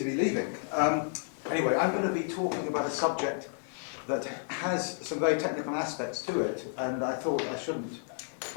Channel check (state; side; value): silent; right; digital silence